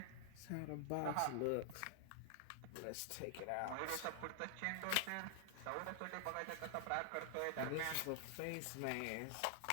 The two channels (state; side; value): different; both; correlation 0.00